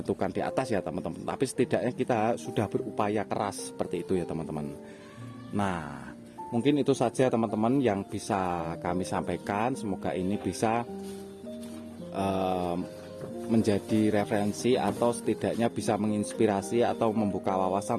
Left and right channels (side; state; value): both; identical; correlation 1.00